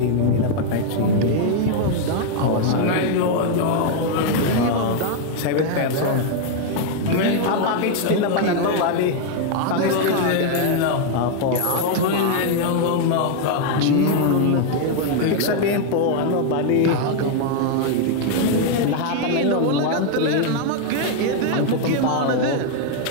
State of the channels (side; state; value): both; different; correlation 0.00